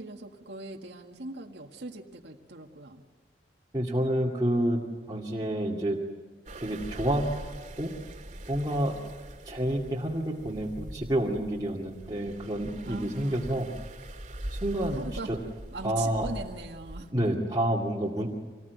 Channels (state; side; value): normal; both; correlation 0.72